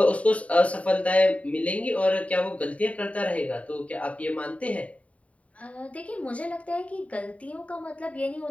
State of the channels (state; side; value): late; right; 0.067 ms